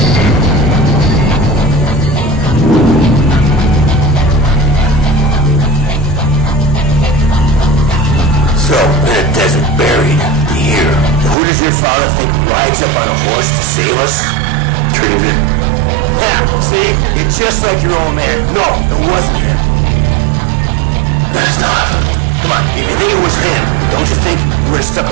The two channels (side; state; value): left; drops out; at 11.4 s